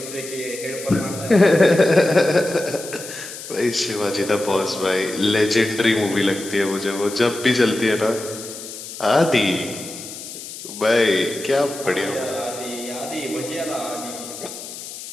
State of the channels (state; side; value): noise; left; hiss, 11 dB below the sound